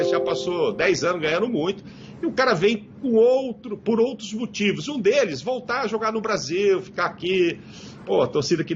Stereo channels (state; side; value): identical; both; correlation 1.00